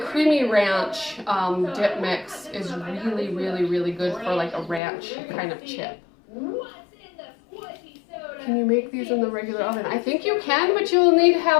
ranch dip mix is really, really, really good for like a ranch kind of chip. Can you make these in the regular oven? I think you can, but you'll need to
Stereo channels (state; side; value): drops out; right; at 4.8 s